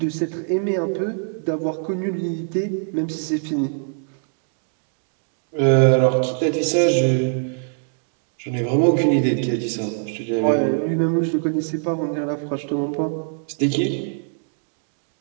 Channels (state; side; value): silent; left; 64 dB below the other